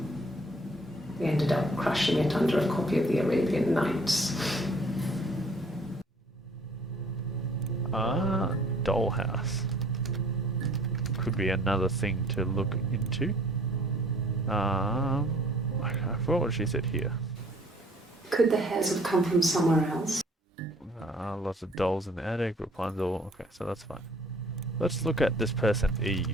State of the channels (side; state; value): both; normal; correlation 0.56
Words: We ended up crushing it under a copy of the Arabian Nights. Dollhouse. Could be another thing to look into. I forgot what she said here. Could the hairs have come from somewhere else? Lots of dolls in the attic, Rapunzel. Okay, so that's fine. Let's look at this person,